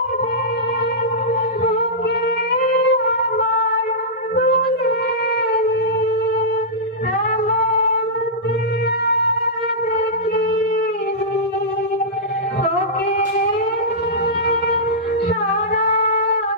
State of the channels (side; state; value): both; normal; correlation -0.15